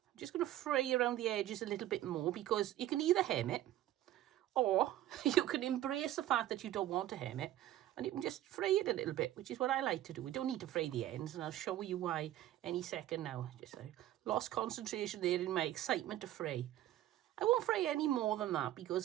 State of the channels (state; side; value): quieter; left; 13.7 dB